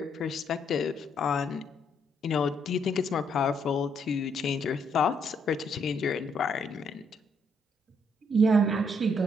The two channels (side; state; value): both; normal; correlation 0.72